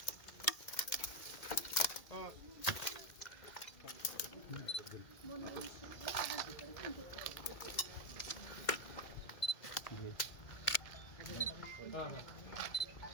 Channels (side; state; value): right; late; 2.0 ms